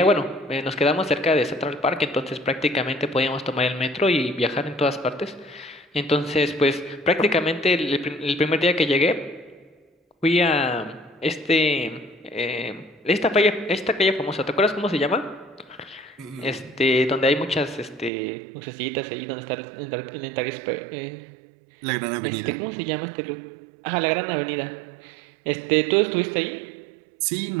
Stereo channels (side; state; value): left; drops out; at 18.1 s